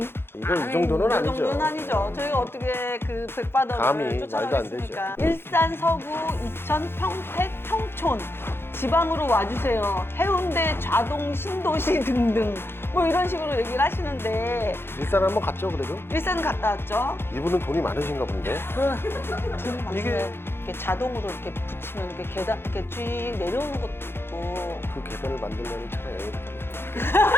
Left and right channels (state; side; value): late; right; 0.11 ms